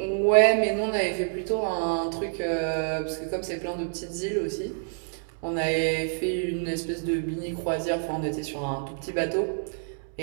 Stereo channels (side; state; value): left; silent; digital silence